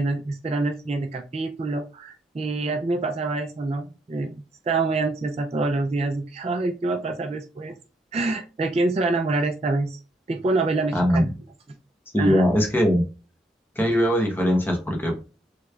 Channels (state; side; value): normal; both; correlation 0.75